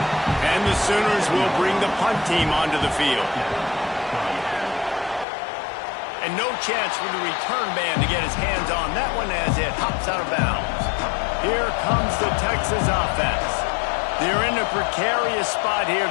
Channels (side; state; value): right; drops out; at 5.2 s